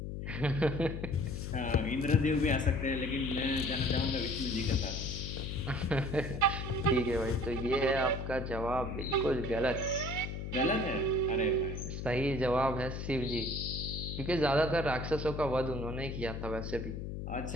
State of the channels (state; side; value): noise; left; hum, 5 dB below the sound